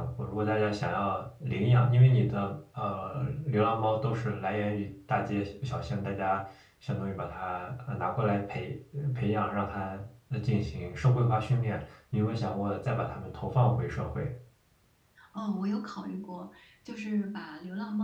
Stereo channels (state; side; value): identical; both; correlation 1.00